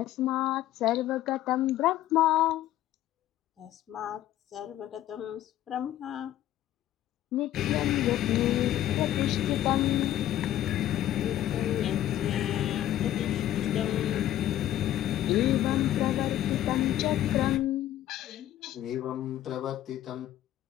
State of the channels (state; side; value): quieter; right; 12.9 dB